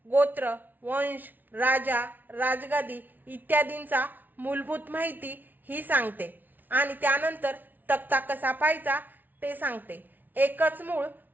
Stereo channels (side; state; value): left; late; 0.084 ms